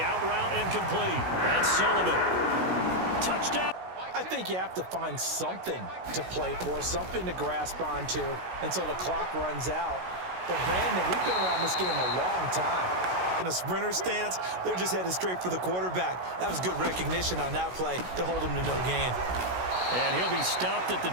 out route incomplete. That's Sullivan. Touchdown. I think you have to find something to play for, something to grasp onto until the clock runs out. But Brandon, we've been around this game a long time. In a sprinter stance, they're just headed straight for the quarterback. That was good recognition on that play to hold him to no gain. And he'll be stopped at the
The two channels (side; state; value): left; late; 16 ms